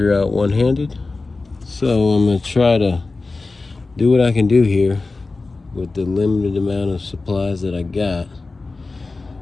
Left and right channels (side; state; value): right; quieter; 3.6 dB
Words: out one-handed, so I'm gonna try to do what I can do here with the limited amount of supplies that I got,